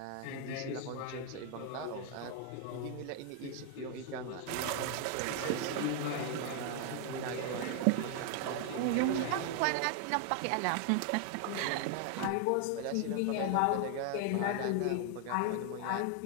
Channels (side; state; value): both; different; correlation 0.00